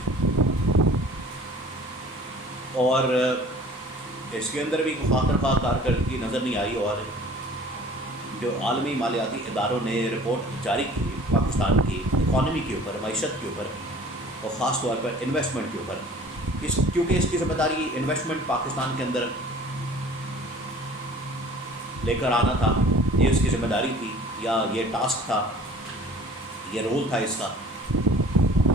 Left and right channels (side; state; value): both; normal; correlation 0.48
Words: اور اس کے اندر بھی خاطر خواہ کارکردگی نظر نہیں آئی، اور جو عالمی مالیاتی اداروں نے رپورٹ جاری کی پاکستان کی اکانومی کے اوپر، معیشت کے اوپر، اور خاص طور پر انویسٹمنٹ کے اوپر، کیونکہ اس کی ذمہ داری انویسٹمنٹ پاکستان کے اندر لے کر آنا تھا، یہ اس کی ذمہ داری تھی، یا یہ ٹاسک تھا، یہ رول تھا اس کا.